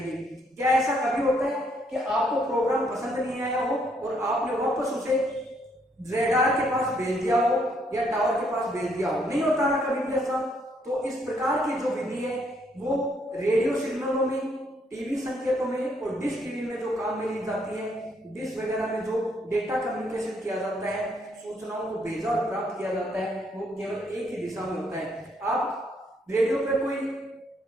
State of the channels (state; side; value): normal; both; correlation 0.71